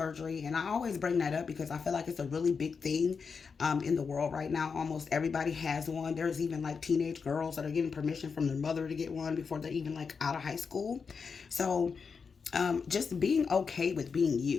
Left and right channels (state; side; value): quieter; right; 5.5 dB